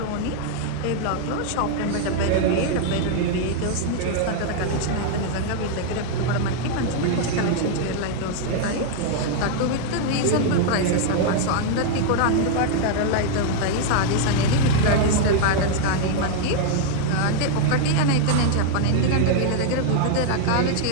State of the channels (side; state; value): both; different; correlation 0.00